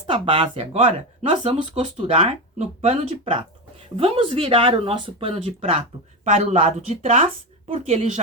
base agora nós vamos costurar no pano de prato. Vamos virar o nosso pano de prato para o lado de trás, porque ele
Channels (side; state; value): both; normal; correlation 0.16